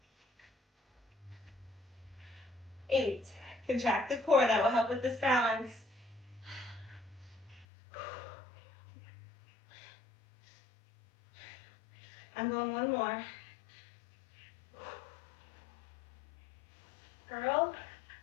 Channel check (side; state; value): right; drops out; at 7.7 s